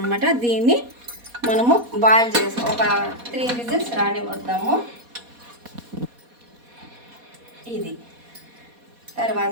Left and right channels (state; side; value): late; left; 4.2 ms